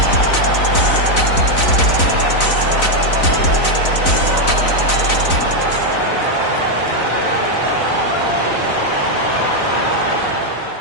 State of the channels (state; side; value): late; right; 4.0 ms